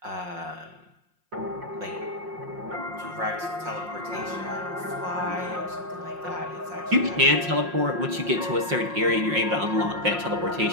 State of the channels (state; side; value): late; left; 5.6 ms